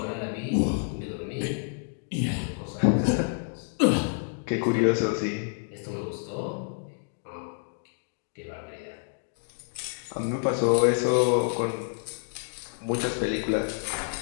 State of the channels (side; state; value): right; silent; 59 dB below the other